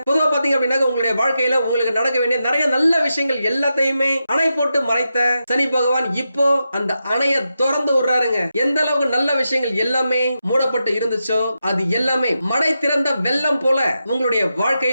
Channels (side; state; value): both; inverted; correlation -0.88